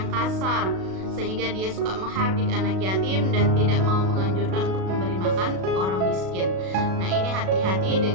kasar, sehingga dia suka menghardik anak yatim dan tidak mau menganjurkan untuk memberi makan orang miskin. Nah, ini hati-hati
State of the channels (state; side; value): late; left; 37 ms